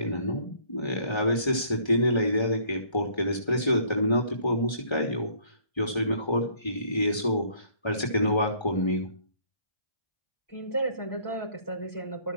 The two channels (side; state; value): right; late; 1.3 ms